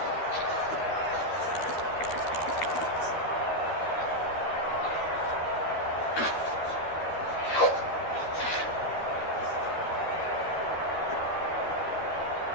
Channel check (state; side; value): late; right; 13 ms